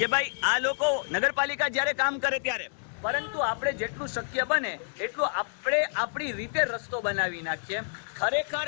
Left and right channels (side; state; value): right; silent; 59 dB below the other